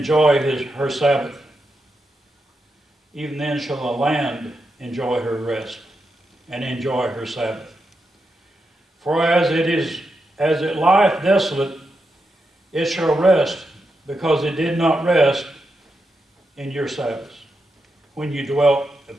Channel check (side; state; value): both; normal; correlation 0.86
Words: her Sabbath. Even then shall the land enjoy her rest and enjoy her Sabbath. For as it lieth desolate, it shall rest, because it did not rest in your Sabbaths, when you dwelt